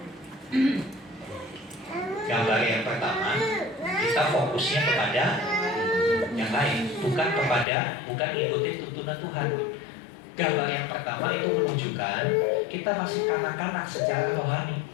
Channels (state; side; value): drops out; right; at 7.7 s